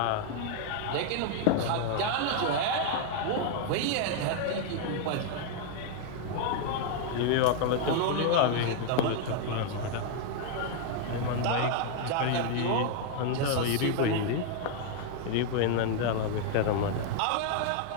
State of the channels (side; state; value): both; different; correlation 0.00